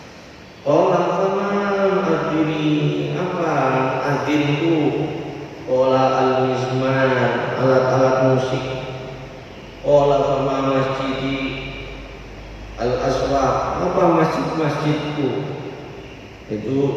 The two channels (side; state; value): both; identical; correlation 1.00